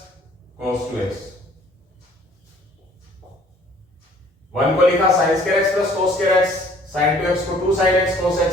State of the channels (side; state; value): both; normal; correlation 0.56